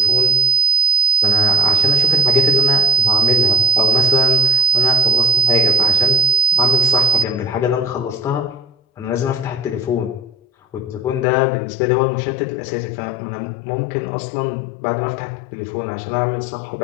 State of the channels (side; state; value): right; drops out; at 11.2 s